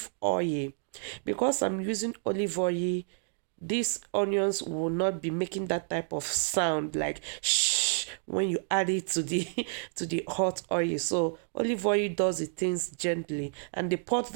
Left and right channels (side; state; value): left; silent; digital silence